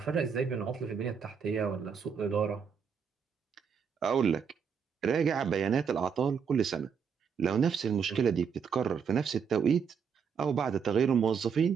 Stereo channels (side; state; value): left; quieter; 6.6 dB